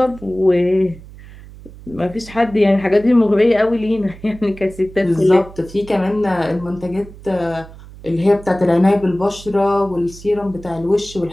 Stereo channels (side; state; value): right; noise; hum, 18 dB below the sound